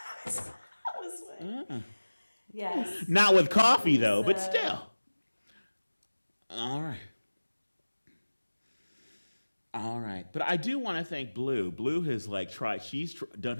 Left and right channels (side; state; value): both; inverted; correlation -1.00